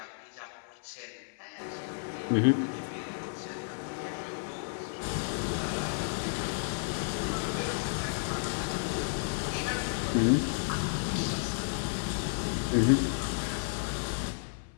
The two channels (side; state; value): right; silent; 56 dB below the other